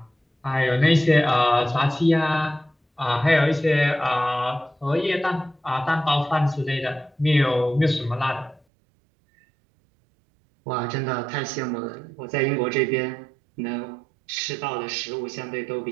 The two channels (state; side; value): drops out; left; at 8.6 s